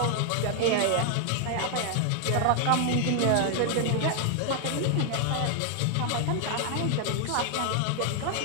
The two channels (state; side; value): different; both; correlation 0.00